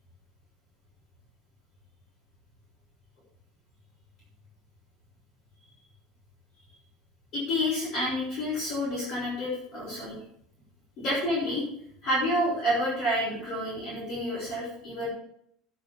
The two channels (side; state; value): both; normal; correlation 0.38